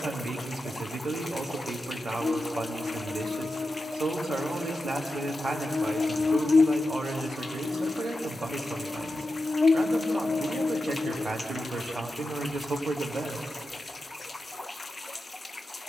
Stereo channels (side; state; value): both; normal; correlation 0.90